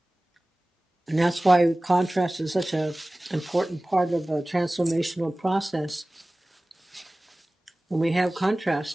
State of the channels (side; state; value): both; normal; correlation 0.98